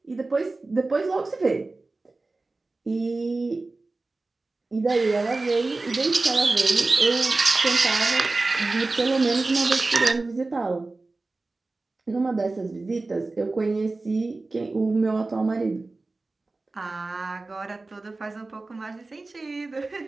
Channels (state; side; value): quieter; left; 3.4 dB